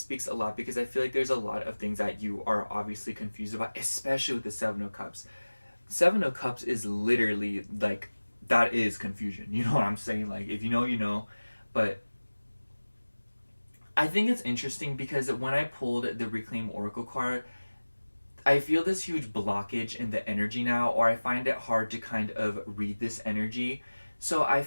a lot, because I feel like there's a lot of things that you are obviously confused about, especially with the Seven of Cups. Seven of Cups is literally like, that is confusion. You know what I'm saying? Like, if you know, you know. But I think it's interesting because when I pulled the Reclaim Oracle card, I feel this huge blockage in the energy now, or I find it hard to kind of read this energy. So I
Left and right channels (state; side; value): inverted; both; correlation -1.00